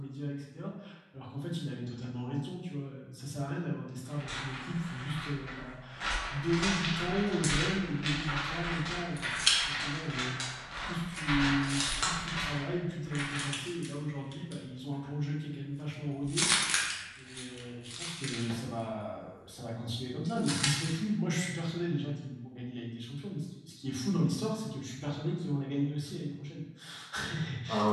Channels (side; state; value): both; identical; correlation 1.00